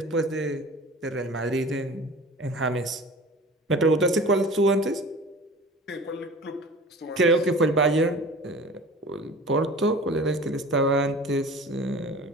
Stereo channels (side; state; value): both; normal; correlation 0.40